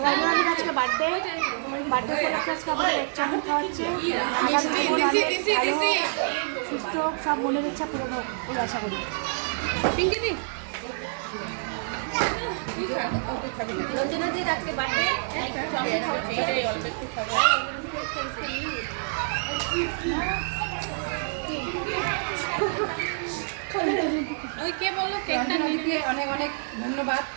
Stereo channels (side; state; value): left; silent; 58 dB below the other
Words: আজকে বার্থডে আজকে আমাদের এক চামচ খাওয়াচ্ছে সুস্থ সব মনের ইচ্ছা পূরণ হোক বলে আশা করি। পিঙ্কিদি রঞ্জনাদির আজকে বার্থডে অল্প একটু খাবো। ওই কে বললো কেকটা নিতে অনেক অনেক ধন্যবাদ